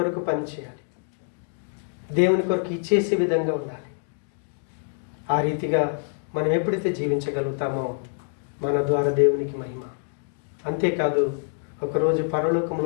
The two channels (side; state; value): right; silent; 61 dB below the other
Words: పనిచేయాలి, దేవుని కొరకు ఇచ్చేసే విధంగా ఉండాలి. ఆ రీతిగా మనం ఎప్పుడైతే జీవించగలుగుతామో మన ద్వారా దేవునికి మహిమ. అంతేకాదు ఒకరోజు